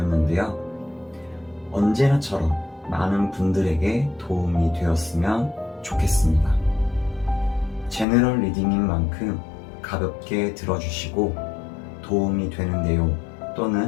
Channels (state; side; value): drops out; right; at 8.1 s